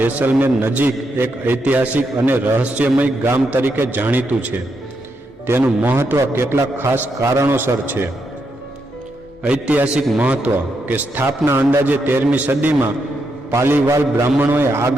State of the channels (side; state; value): both; normal; correlation 0.81